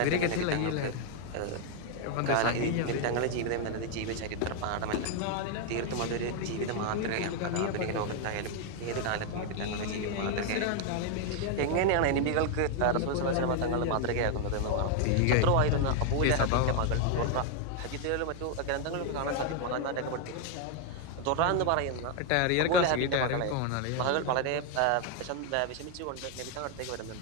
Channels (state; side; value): different; both; correlation 0.00